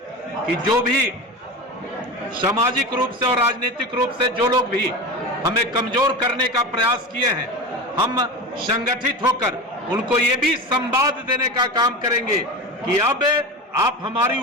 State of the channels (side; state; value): both; normal; correlation 0.27